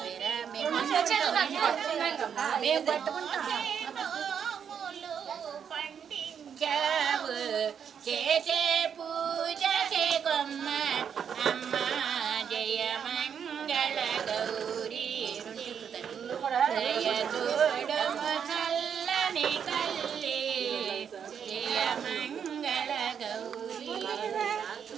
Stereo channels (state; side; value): quieter; left; 7.7 dB